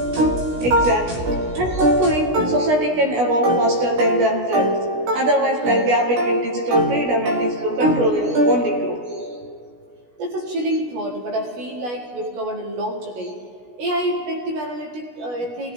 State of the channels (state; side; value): late; left; 16 ms